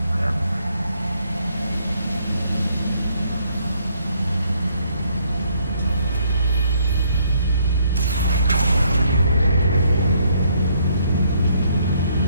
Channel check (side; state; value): both; inverted; correlation -0.69